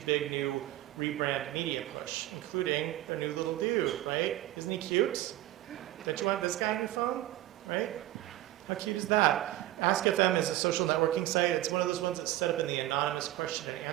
big, new rebrand media push, including their new little dude, right? Isn't he cute? Don't you want this guy on your phone? Right? How cute is that? Ask FM is a social networking site. It's one of those ones that's set up in the anonymous question and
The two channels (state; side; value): quieter; left; 15.4 dB